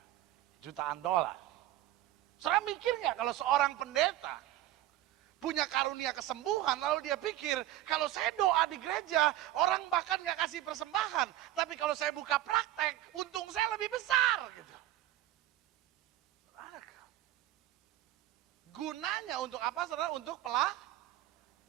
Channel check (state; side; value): quieter; left; 14.4 dB